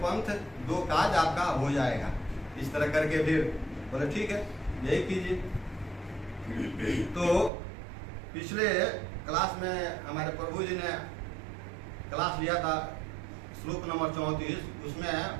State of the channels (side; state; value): left; drops out; at 7.5 s